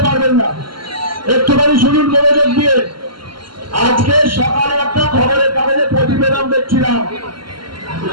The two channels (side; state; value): left; late; 0.73 ms